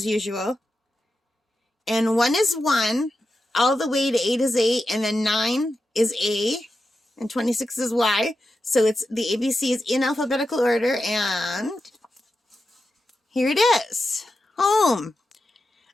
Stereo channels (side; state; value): both; normal; correlation 0.90